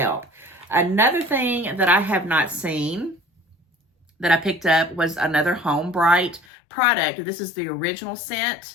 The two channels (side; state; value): right; drops out; at 6.5 s